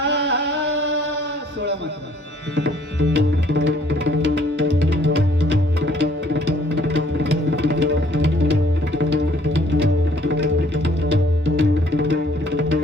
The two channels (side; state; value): both; normal; correlation 0.60